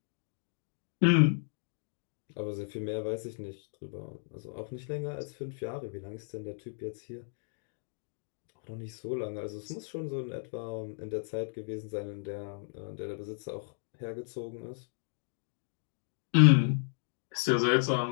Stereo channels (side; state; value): right; silent; digital silence